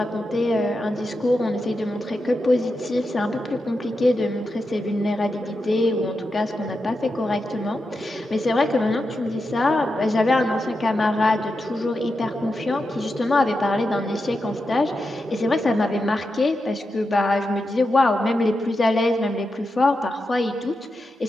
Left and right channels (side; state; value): both; normal; correlation 0.88